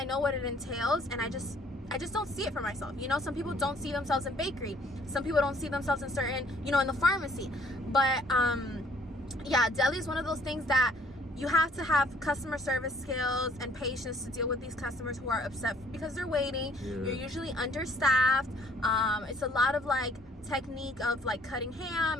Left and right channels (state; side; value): normal; both; correlation 0.61